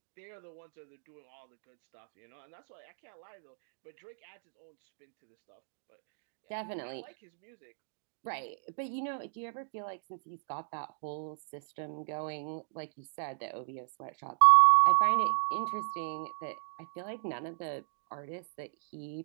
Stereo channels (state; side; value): silent; left; digital silence